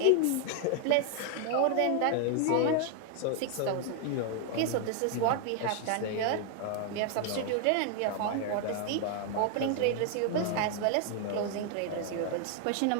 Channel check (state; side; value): different; both; correlation 0.00